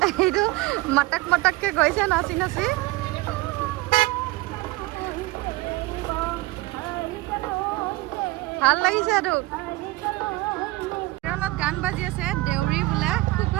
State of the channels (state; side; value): quieter; left; 20.2 dB